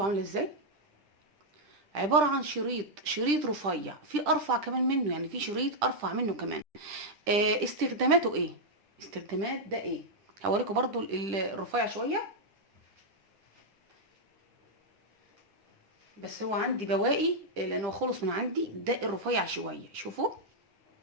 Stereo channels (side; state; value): left; late; 10 ms